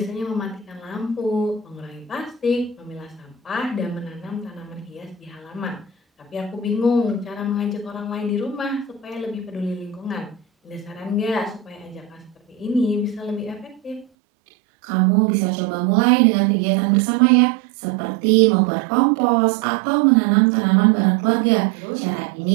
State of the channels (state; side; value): drops out; left; at 14.1 s